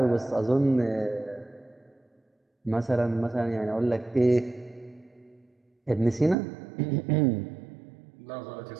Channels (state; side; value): drops out; left; at 6.4 s